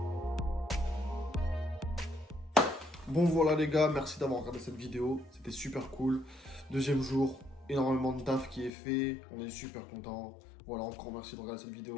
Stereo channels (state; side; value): drops out; right; at 8.7 s